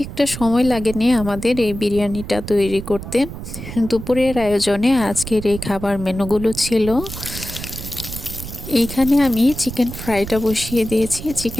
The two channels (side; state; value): right; noise; rumble, 10 dB below the sound